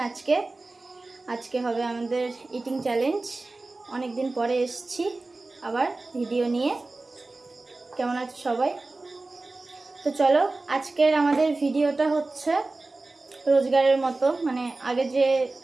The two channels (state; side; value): quieter; left; 3.3 dB